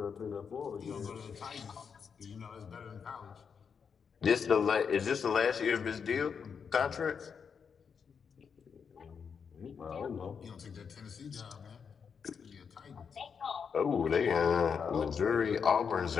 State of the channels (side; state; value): right; quieter; 6.4 dB